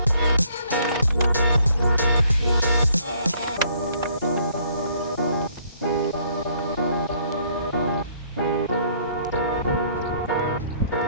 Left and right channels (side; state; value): both; inverted; correlation -0.63